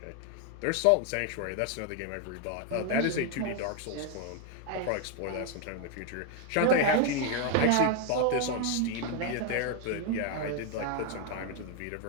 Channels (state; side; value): different; both; correlation 0.01